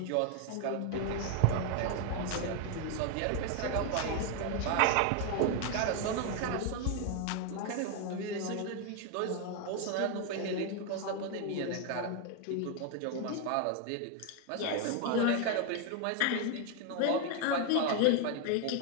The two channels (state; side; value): different; both; correlation 0.01